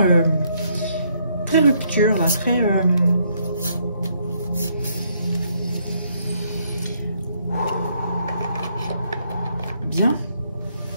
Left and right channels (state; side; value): inverted; both; correlation -0.71